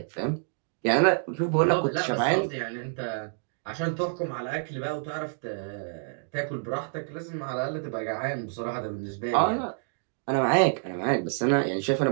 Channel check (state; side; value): silent; left; digital silence